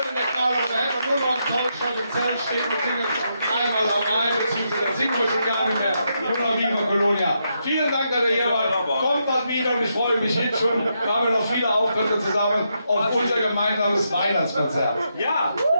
der Karneval, da hätte man nur noch ein tolles Schott im Zelt stehen und singen einmal am Rhein, beziehungsweise dann singen wir schon gar nicht mehr. Nur noch Viva Colonia. Vielen Dank, dass ihr hier wart. Kommt bald wieder und ich freue mich jetzt schon. Wir haben noch viele Auftritte zusammen auf unser gemeinsames Weihnachtskonzert. Ja!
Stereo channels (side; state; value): both; inverted; correlation -0.81